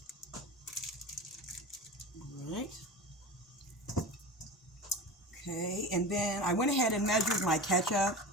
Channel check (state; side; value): normal; both; correlation 0.31